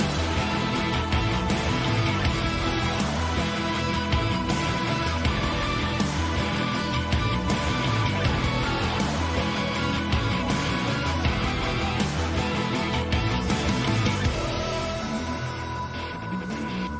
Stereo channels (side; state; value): both; identical; correlation 1.00